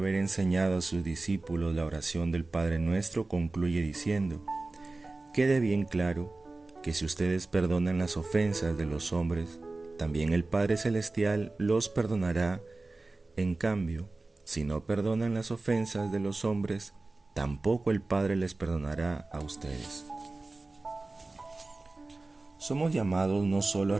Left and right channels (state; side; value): quieter; left; 3.3 dB